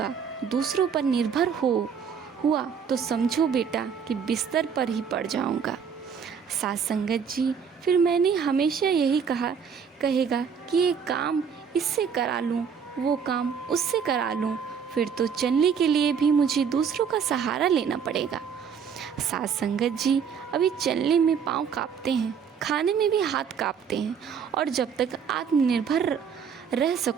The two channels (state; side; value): quieter; left; 6.9 dB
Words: दूसरों पर निर्भर हुआ तो समझो बेटा कि बिस्तर पर ही पड़ जाऊंगा। साथ संगत जी, फिर मैंने हमेशा यही कहेगा कि ये काम इससे करा लूँ, वो काम उससे करा लूँ, फिर तो चलने के लिए भी मुझे दूसरों का सहारा लेना पड़ेगा। साथ संगत जी, अभी चलने में पाँव कांपते हैं, खाने में भी हाथ कांपते हैं, और जब तक आत्मनिर्भर रह